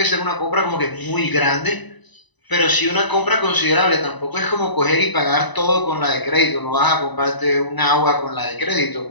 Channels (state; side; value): late; right; 1.0 ms